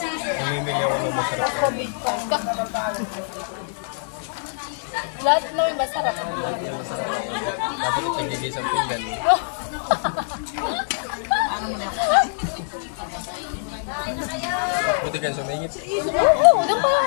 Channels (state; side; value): silent; right; 63 dB below the other